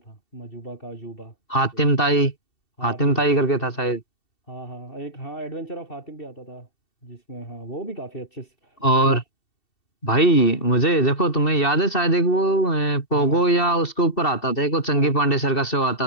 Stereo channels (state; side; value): late; right; 2.7 ms